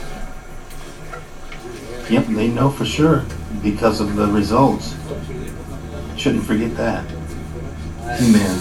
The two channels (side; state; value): both; identical; correlation 1.00